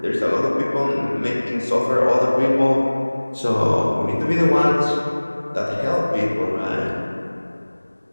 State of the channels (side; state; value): both; inverted; correlation -1.00